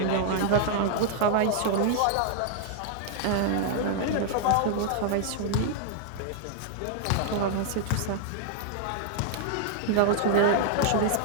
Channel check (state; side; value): different; both; correlation -0.01